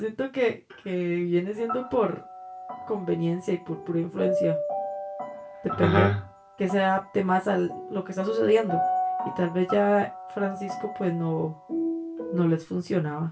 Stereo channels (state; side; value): identical; both; correlation 1.00